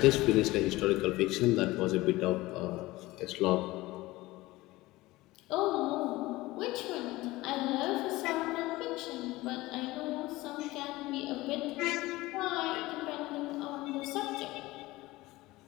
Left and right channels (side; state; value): right; quieter; 19.3 dB